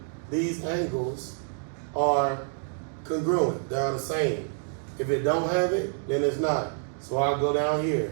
these angles are congruent. They are the same. If it don't have it, then it's not. So I'll go down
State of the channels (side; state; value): left; silent; 60 dB below the other